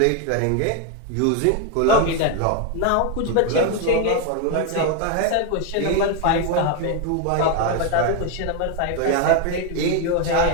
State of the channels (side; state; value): both; different; correlation 0.01